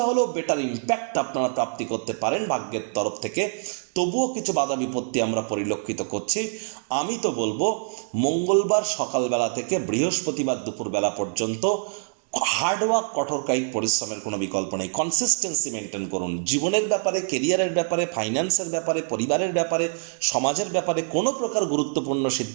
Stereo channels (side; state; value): left; silent; digital silence